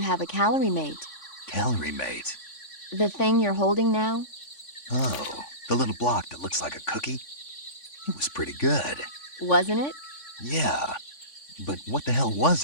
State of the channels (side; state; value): right; late; 3.5 ms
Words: have a calorie mate. Calorie mate. The thing you're holding now? Oh, the little block that looks like a cookie? It was pretty good. Wasn't it? Yeah, but what the hell